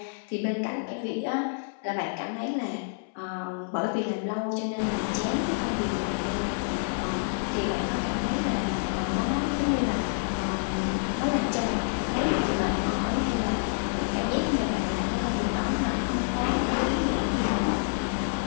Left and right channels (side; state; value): right; silent; 59 dB below the other